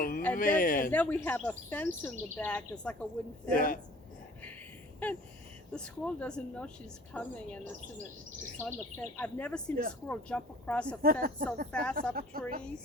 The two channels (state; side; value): normal; both; correlation 0.49